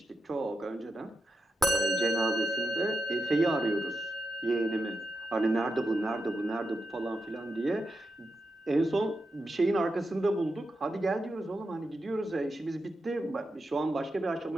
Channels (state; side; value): normal; both; correlation 0.87